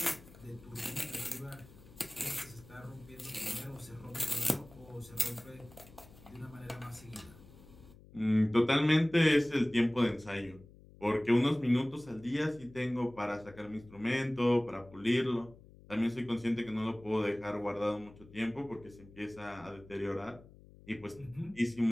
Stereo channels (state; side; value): noise; left; hum, 22 dB below the sound